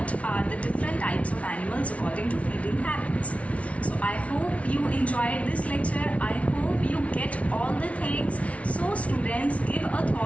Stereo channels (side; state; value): right; late; 0.064 ms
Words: are the different types of animals according to feeding habits. So I hope you enjoyed this lecture. I hope you get all the things. So students, give a